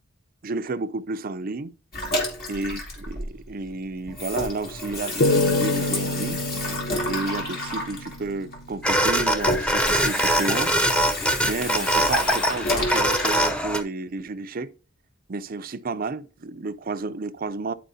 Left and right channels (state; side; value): normal; both; correlation 0.29